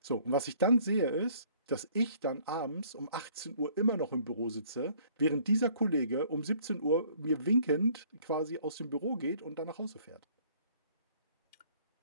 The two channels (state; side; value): inverted; both; correlation -0.58